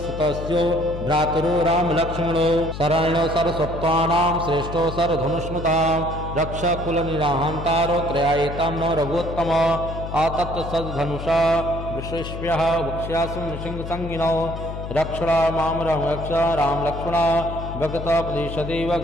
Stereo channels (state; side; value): noise; left; hum, 8 dB below the sound